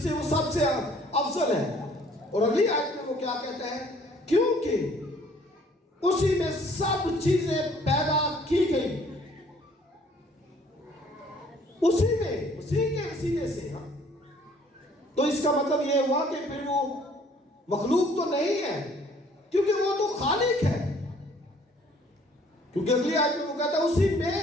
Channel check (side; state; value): both; normal; correlation 0.59